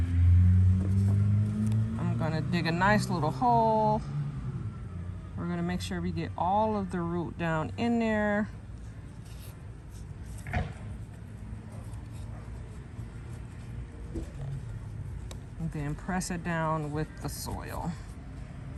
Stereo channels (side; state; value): both; identical; correlation 1.00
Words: I'm gonna dig a nice little hole. We're gonna make sure we get all of the root down in there. And then press it down with the soil